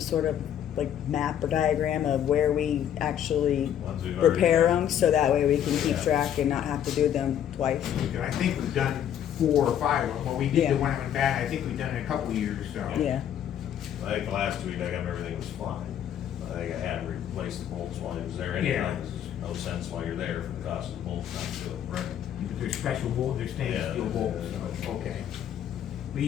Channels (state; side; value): quieter; right; 10.0 dB